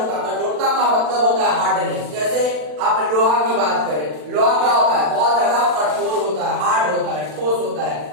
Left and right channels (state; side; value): late; left; 40 ms